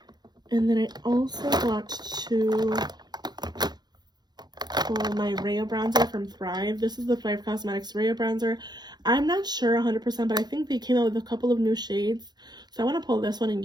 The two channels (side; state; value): left; late; 0.20 ms